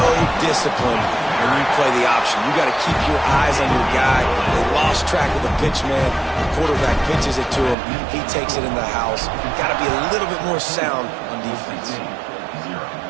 disciplined when you play the option. You got to keep your eyes on your guy. They lost track of the pitch, man. The quarterback pitches it to him. He takes it in the house. Got to be a little bit more sound on defense.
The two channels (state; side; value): drops out; left; at 7.8 s